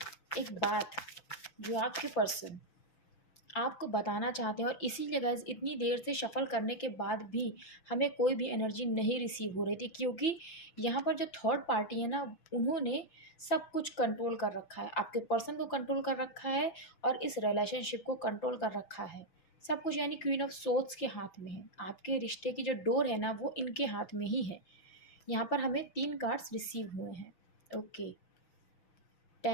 एक बात जो आपके पर्सन आपको बताना चाहते हैं। और इसीलिए गाइस, इतनी देर से शफल करने के बाद भी हमें कोई भी एनर्जी नहीं रिसीव हो रही थी, क्योंकि यहाँ पर जो थर्ड पार्टी है ना, उन्होंने सब कुछ कंट्रोल कर रखा है। आपके पर्सन को कंट्रोल कर रखा है और इस रिलेशनशिप को कंट्रोल कर रखा है, सब कुछ। यानी क्वीन ऑफ सोर्ड्स के हाथ में है। आपके रिश्ते की जो डोर है ना, वो इनके हाथ में ही है। यहाँ पर हमें 3 कार्ड्स रिसीव हुए हैं। Okay,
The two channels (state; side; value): late; right; 6.1 ms